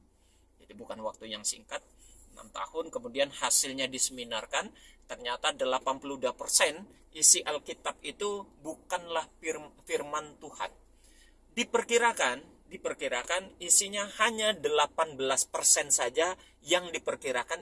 Jadi bukan waktu yang singkat, 6 tahun. Kemudian hasilnya diseminarkan, ternyata 82% isi Alkitab itu bukanlah firman Tuhan. Diperkirakan isinya hanya 18% saja yang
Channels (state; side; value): identical; both; correlation 1.00